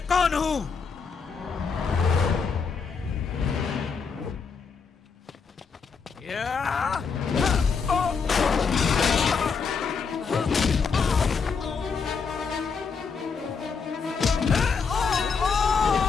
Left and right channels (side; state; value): right; quieter; 5.5 dB